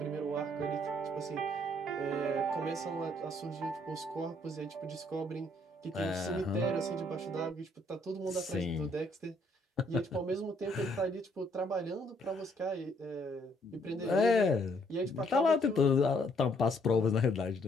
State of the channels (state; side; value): normal; both; correlation 0.67